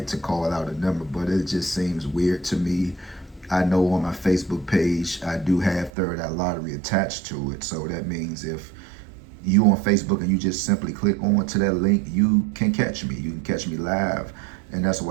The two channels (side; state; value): left; drops out; at 5.9 s